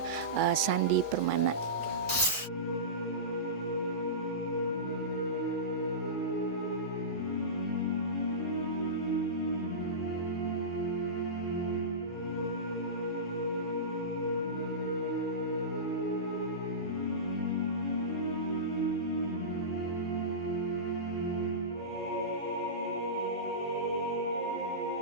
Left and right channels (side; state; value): both; normal; correlation -0.20